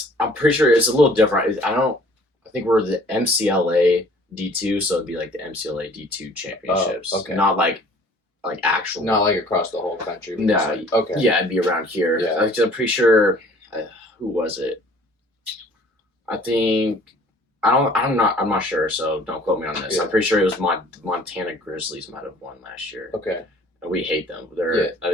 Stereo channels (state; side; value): normal; both; correlation 0.53